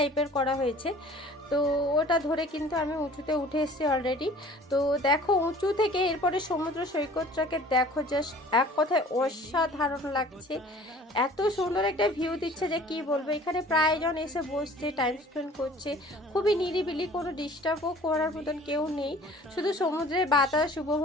করা হয়েছে। তো ওটা ধরে কিন্তু আমি উঁচুতে উঠে এসেছি অলরেডি। তো দেখো উঁচু থেকে এরপরে সমুদ্র সৈকতটাকে দেখো, জাস্ট এক কথায় অসাধারণ লাগছে। এত সুন্দর একটা ভিউ দিচ্ছে যে কি বলবো। এখানে প্রায়জন এসে বসছে, টাইম স্পেন্ড করছে, খুবই নিরিবিলি, কোনো ডিস্টার্বও করার মতন কেউ নেই। শুধু সমুদ্রের বাতাস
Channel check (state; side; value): normal; both; correlation 0.48